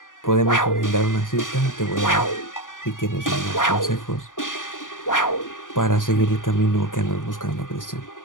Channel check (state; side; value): late; right; 0.88 ms